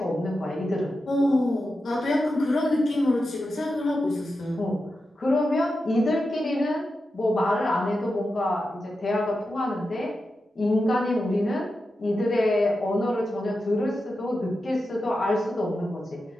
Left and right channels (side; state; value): both; normal; correlation 0.90